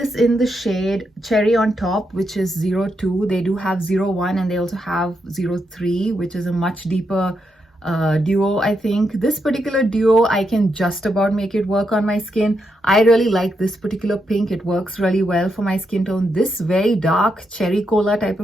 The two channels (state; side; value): normal; both; correlation 0.82